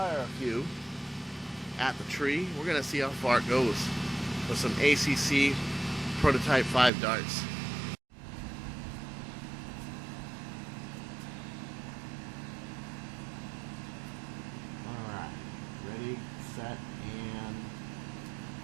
a few at the tree. We're gonna see how far it goes with some ACC prototype 5 darts. Alright, ready, set, and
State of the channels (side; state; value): left; drops out; at 6.9 s